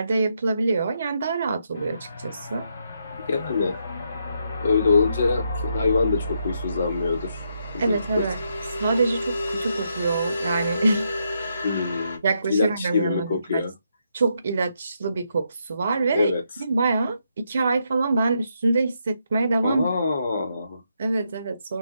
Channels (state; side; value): inverted; both; correlation -0.79